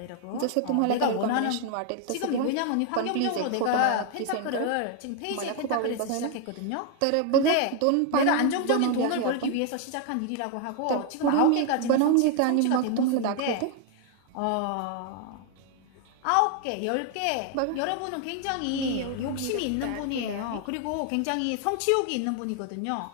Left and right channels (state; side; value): different; both; correlation 0.00